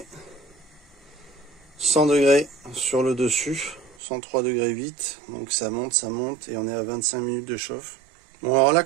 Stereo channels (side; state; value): left; drops out; at 4.0 s